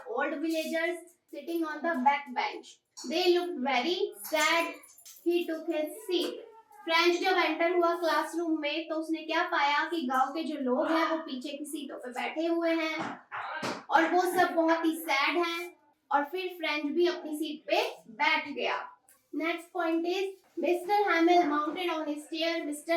old villagers sitting on the back bench. They looked very sad. He took his seat. French जब enter हुआ classroom में तो उसने क्या पाया कि गांव के जो लोग हैं वो पीछे की सीटों पे बैठे हुए हैं और वो सब बहुत ही सैड हैं। और फिर फ्रेंच भी अपनी सीट पे बैठ गया। Next point is, mister Hamil mounted on his chair.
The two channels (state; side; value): identical; both; correlation 1.00